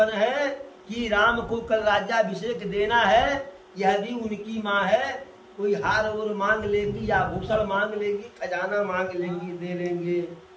है कि राम को कल राज्याभिषेक देना है। यह भी उनकी माँ है। कोई हार और मांग लेंगी, या भूषण मांग लेंगी, खजाना मांग लेंगी, दे लेंगे।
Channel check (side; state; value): both; identical; correlation 1.00